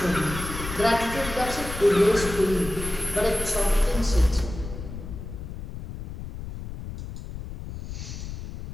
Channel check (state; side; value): noise; left; rumble, 9 dB below the sound